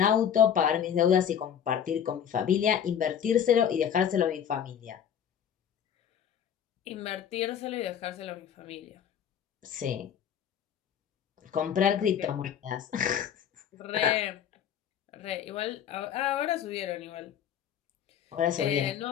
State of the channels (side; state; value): right; quieter; 8.8 dB